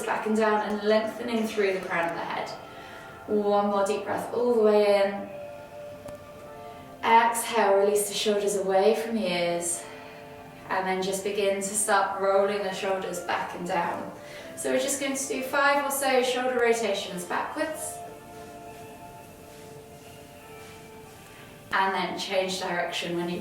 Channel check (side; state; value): both; identical; correlation 1.00